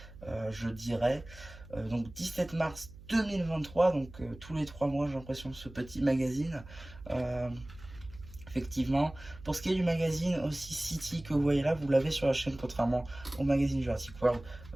je dirais. Donc 17 mars 2023, donc tous les 3 mois j'ai l'impression ce petit magazine. Effectivement, pour ce qui est du magazine aussi City que vous voyez là, vous l'avez sur la chaîne contrairement au magazine Jurassic World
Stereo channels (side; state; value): right; noise; hum, 18 dB below the sound